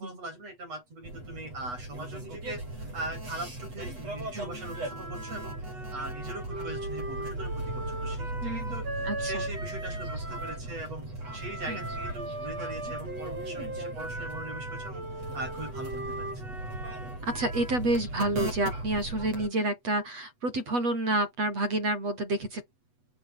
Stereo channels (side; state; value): left; late; 8.2 ms